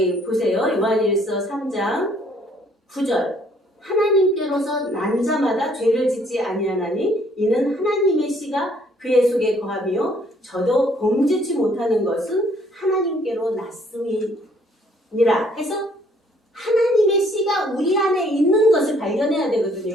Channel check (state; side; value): normal; both; correlation 0.63